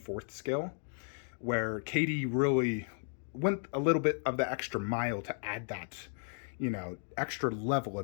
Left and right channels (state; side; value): silent; right; 55 dB below the other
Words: scale, where KD really went a little bit of the extra mile to add that, you know, extra level